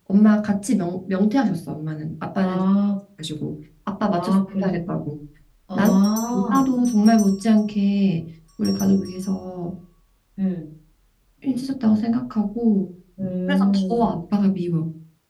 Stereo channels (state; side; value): identical; both; correlation 1.00